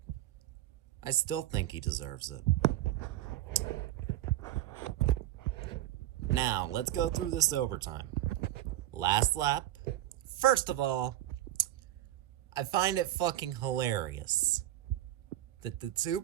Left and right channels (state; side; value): quieter; left; 14.2 dB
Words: I still think he deserves it. Now, let's go through this overtime. Last lap. First of all, I find it fucking hilarious that the two